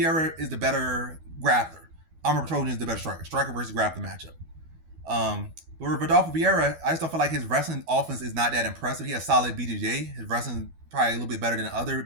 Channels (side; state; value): left; late; 12 ms